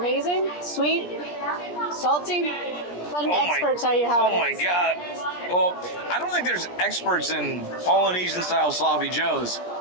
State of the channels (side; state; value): right; late; 17 ms